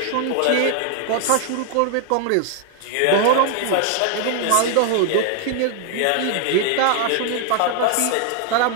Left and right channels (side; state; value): both; different; correlation 0.00